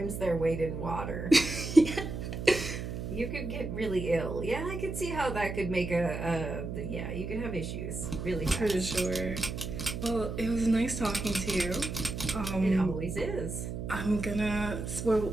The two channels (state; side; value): noise; right; hum, 5 dB below the sound